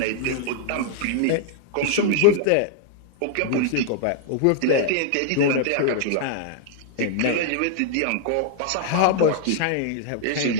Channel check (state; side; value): different; both; correlation -0.01